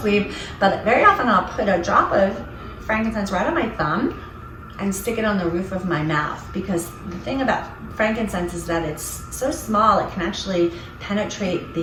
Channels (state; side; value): identical; both; correlation 1.00